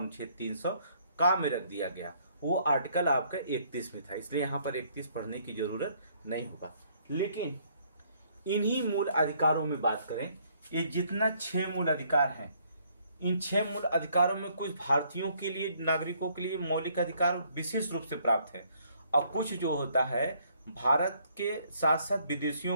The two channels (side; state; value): both; inverted; correlation -0.66